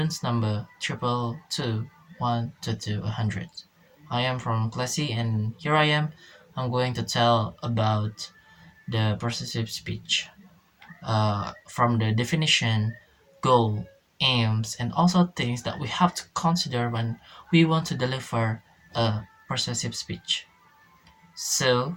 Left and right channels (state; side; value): identical; both; correlation 1.00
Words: number 222122100. I am from Class C and here I am. I'm going to tell about the persuasive speech. From the definition, goal, aims, and also things that we have to consider when we want to deliver a persuasive speech. So,